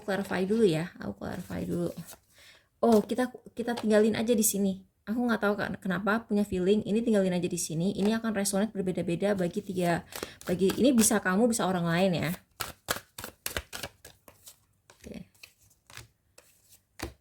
clarify dulu. Oh, kita tinggalin aja di sini. Aku nggak tahu kenapa punya feeling ini tinggalin aja di sini. Ini akan resonate berbeda-beda bagi ini, bisa kamu bisa orang lain ya.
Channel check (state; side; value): identical; both; correlation 1.00